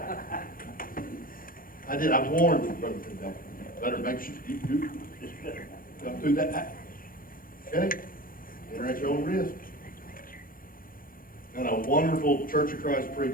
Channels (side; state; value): right; late; 0.41 ms